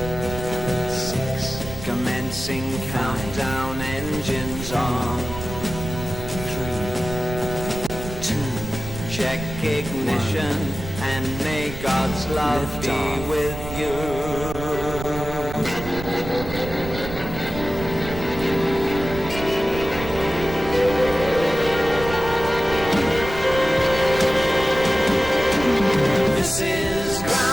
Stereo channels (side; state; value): right; noise; rumble, 9 dB below the sound